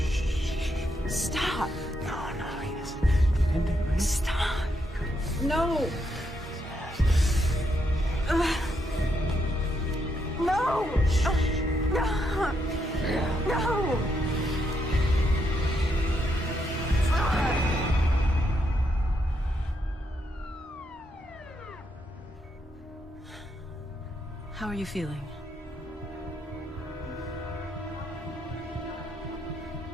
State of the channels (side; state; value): both; normal; correlation 0.78